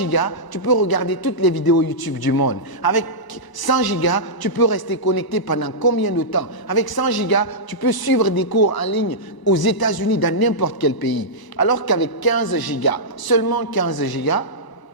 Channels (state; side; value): late; right; 1.0 ms